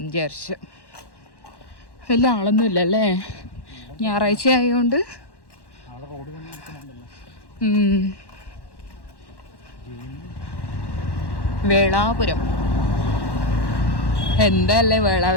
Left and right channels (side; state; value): right; late; 1.1 ms